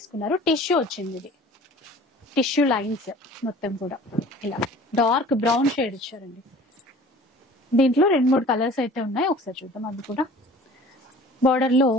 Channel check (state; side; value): normal; both; correlation 0.46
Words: టిష్యూ వచ్చింది. ఇది టిష్యూ లైన్స్ మొత్తం కూడా ఇలా డార్క్ బ్రౌన్ షేడ్ ఇచ్చారండి. దీంట్లో 2-3 కలర్స్ అయితే ఉన్నాయి. ఒకసారి చూద్దాం. అది కూడా బార్డర్ లో